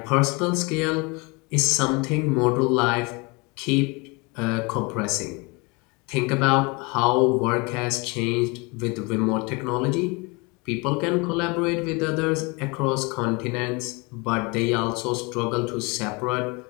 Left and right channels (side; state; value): right; quieter; 28.2 dB